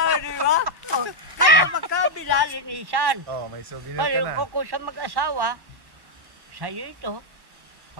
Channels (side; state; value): left; late; 1.1 ms